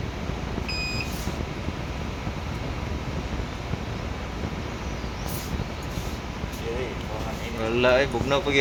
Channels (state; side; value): identical; both; correlation 1.00